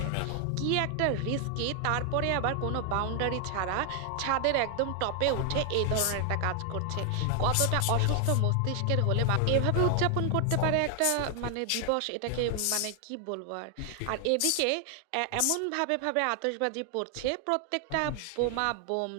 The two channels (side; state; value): both; different; correlation 0.00